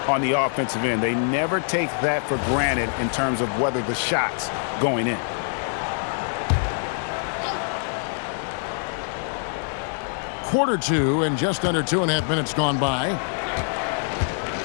on the offensive end. They never take that for granted in terms of whether the shot's going in. Quarter 2 and just under 2.5 minutes gone by.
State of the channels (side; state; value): right; silent; 62 dB below the other